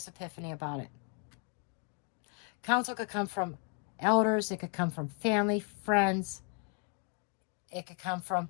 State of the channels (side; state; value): right; quieter; 36.3 dB